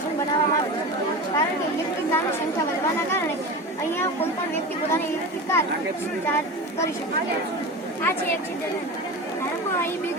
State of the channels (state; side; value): normal; both; correlation 0.28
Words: બનાવવામાં આવ્યું છે કારણ કે ઇલેક્ટ્રિક કારની સંખ્યા વધવાના કારણે અહીંયા કોઈ પણ વ્યક્તિ પોતાની ઇલેક્ટ્રિક કાર ચાર્જ કરી શકે. આ છે એક્સિડન્ટ. ધારો કે અહીં બે